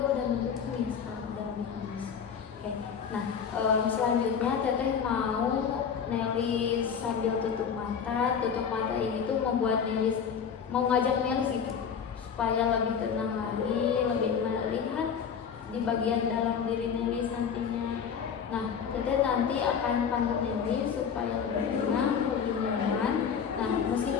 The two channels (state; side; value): quieter; right; 7.0 dB